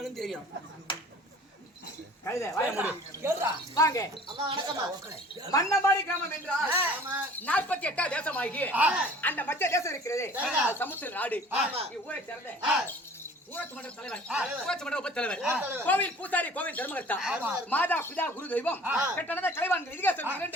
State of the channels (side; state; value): both; normal; correlation 0.48